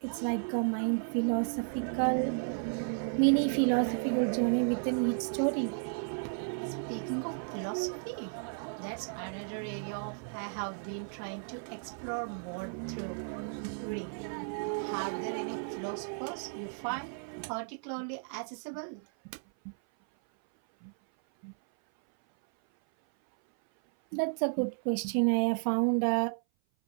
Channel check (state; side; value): silent; left; 55 dB below the other